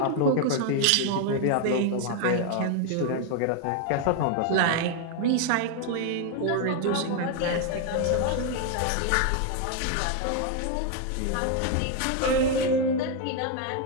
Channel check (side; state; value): both; different; correlation 0.01